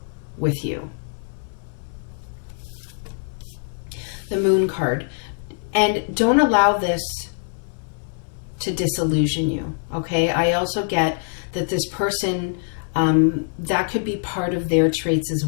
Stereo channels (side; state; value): right; silent; digital silence